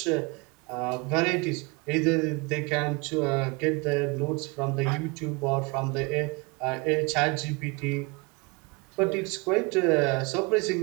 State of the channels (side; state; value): left; quieter; 27.8 dB